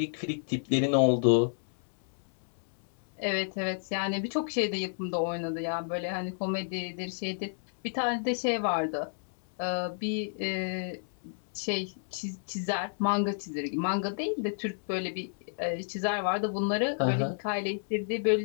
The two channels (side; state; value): right; silent; 57 dB below the other